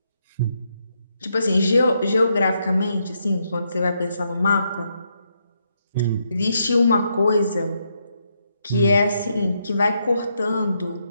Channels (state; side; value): inverted; both; correlation -0.79